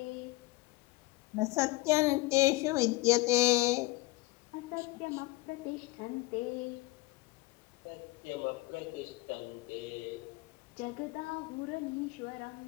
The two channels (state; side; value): quieter; right; 21.0 dB